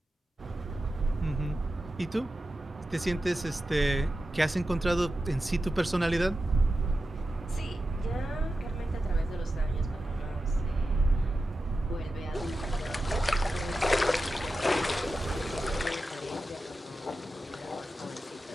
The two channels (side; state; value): both; normal; correlation 0.92